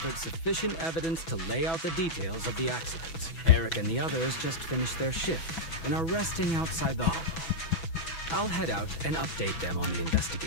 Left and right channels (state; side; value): late; right; 6.1 ms